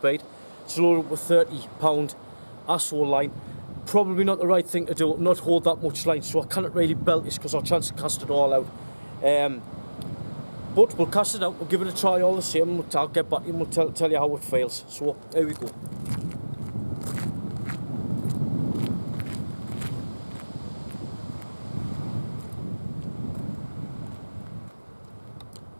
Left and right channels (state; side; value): inverted; both; correlation -1.00